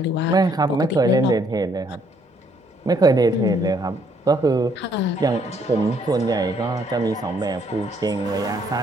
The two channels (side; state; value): both; normal; correlation 0.67